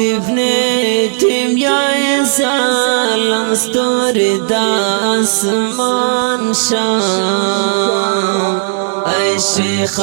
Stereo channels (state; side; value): silent; left; digital silence